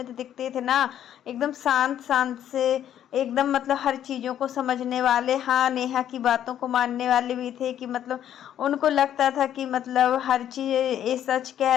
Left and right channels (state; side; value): quieter; right; 10.6 dB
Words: दिखते थे ना, एकदम शांत शांत से, एकदम मतलब हर चीज़ों को समझने वाले, हाँ नेहा की बातों को मानने वाले भी थे, कि मतलब उनको लगता था कि मतलब हर चीज़ ये सच कह